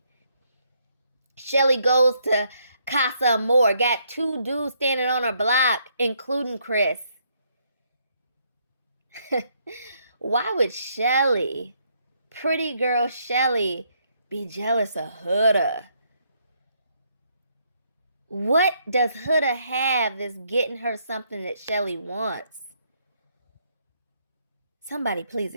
Chelley goes to Casa Amor, got 2 dudes standing on her block, including Chris. Why would Chelley, pretty girl Chelley, be jealous of Huda? What does Huda have that's getting her something that Chelley wants? Somebody please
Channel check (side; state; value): both; inverted; correlation -0.72